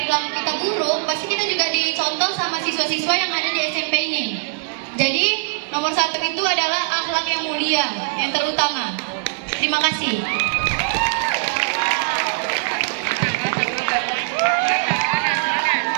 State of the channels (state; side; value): silent; left; digital silence